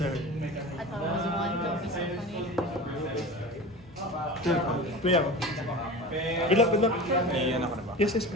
I thought it was one. Don't be so funny. Sure. Play ako. Good luck, good luck. Iyan ako na ba? Yes, yes,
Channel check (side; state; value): both; normal; correlation 0.33